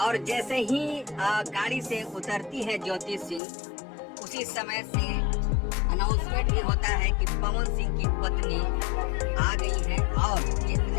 जैसे ही गाड़ी से उतरती है ज्योति सिंह, उसी समय से अनाउंसमेंट भी होता है कि पवन सिंह की पत्नी आ गई है। और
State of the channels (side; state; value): right; drops out; at 3.4 s